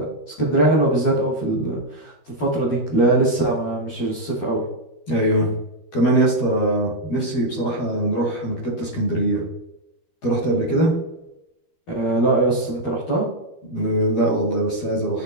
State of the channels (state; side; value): late; right; 12 ms